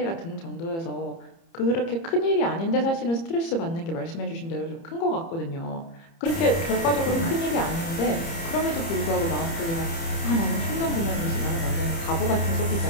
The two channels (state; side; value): late; right; 30 ms